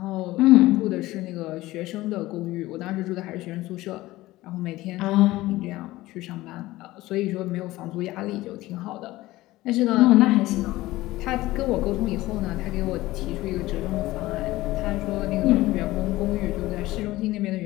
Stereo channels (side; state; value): right; quieter; 17.7 dB